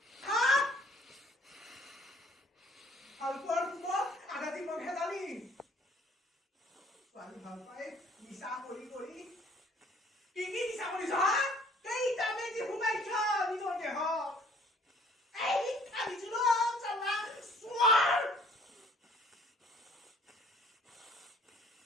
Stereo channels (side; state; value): both; normal; correlation 0.57